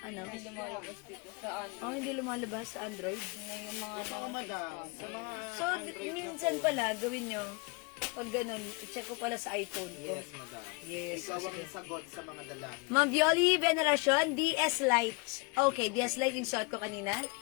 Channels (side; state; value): right; quieter; 29.0 dB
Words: Hindi lumalabas dito sa ano. Oh, hindi lumalabas sa Android. Yung mga Mga madam, sa mga So, minsan pala, gawin nyo, pag ganun, i-check ko pala sa iPhone ko. yes, madam. Yes. Ikaw ang sagot sa mga dalang. Ma'am Violi, Veneracion, DS Lite. Okay, DS Lite yung suot ko kanina.